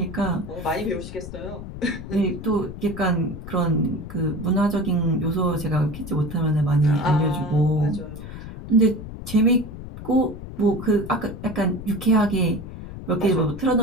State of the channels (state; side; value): noise; left; rumble, 11 dB below the sound